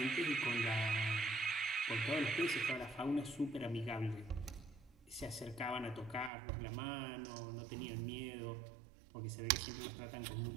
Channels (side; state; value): left; drops out; at 6.3 s